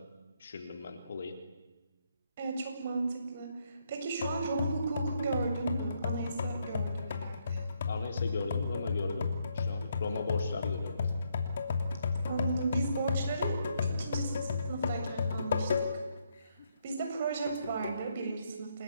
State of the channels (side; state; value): both; inverted; correlation -0.76